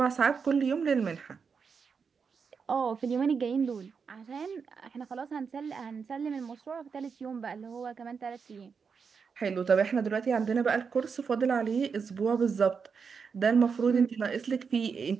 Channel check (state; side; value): quieter; left; 5.8 dB